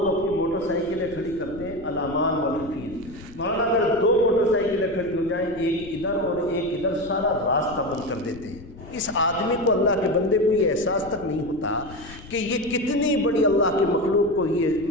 اپنی موٹر سائیکلیں کھڑی کرتے ہیں الامان والحفیظ، مولانا اگر 2 موٹر سائیکلیں کھڑی ہو جائیں، ایک ادھر اور ایک ادھر، سارا راستہ بند کر دیتے ہیں۔ اس آدمی کو، اللہ کے بندے کو یہ احساس تک نہیں ہوتا کہ یہ کتنی بڑی اللہ کے مخلوق کو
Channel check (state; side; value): noise; left; rumble, 18 dB below the sound